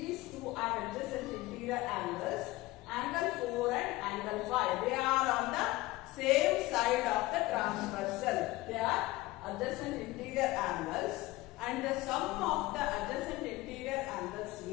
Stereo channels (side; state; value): right; quieter; 19.5 dB